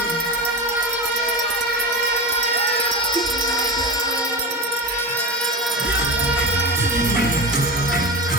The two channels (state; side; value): normal; both; correlation 0.23